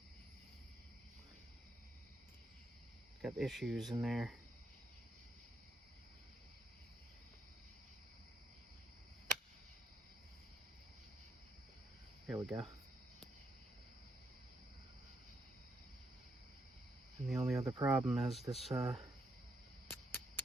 Got issues in there. There we go. And the only other problem is this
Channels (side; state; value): both; normal; correlation 0.76